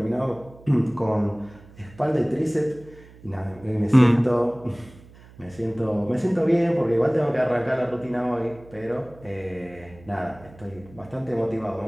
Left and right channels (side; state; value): right; noise; hum, 22 dB below the sound